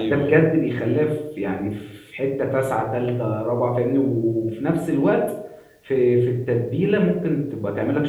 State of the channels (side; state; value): both; identical; correlation 1.00